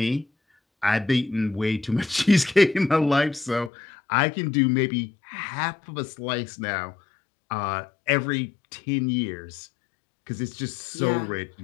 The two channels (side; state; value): right; drops out; at 3.7 s